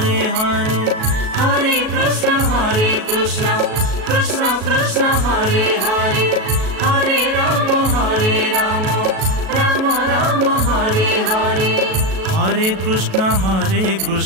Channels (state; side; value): late; left; 37 ms